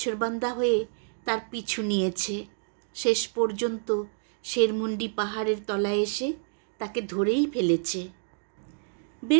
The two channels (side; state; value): left; silent; digital silence